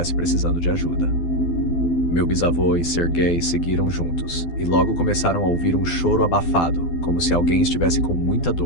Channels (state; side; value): late; right; 12 ms